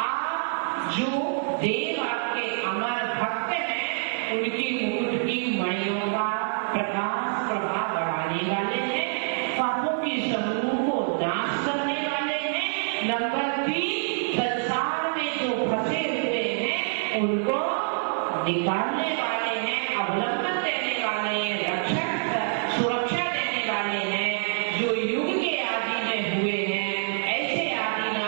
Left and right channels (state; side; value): silent; left; 61 dB below the other